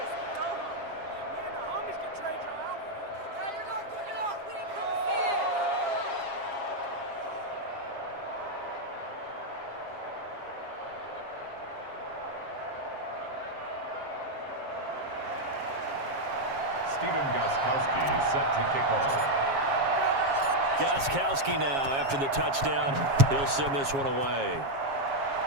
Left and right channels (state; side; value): late; left; 7.4 ms